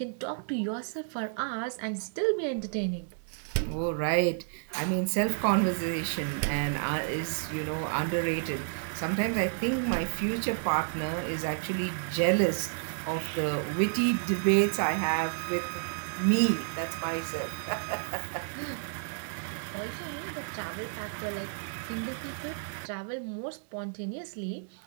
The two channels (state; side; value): silent; left; digital silence